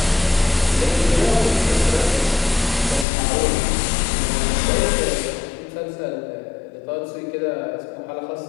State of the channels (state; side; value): drops out; right; at 3.1 s